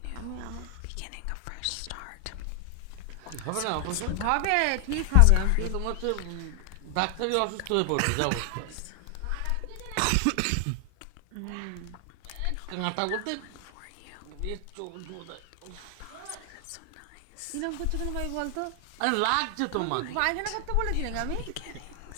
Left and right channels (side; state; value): both; different; correlation 0.00